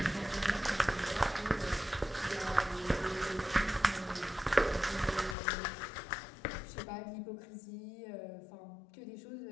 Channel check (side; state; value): right; drops out; at 5.4 s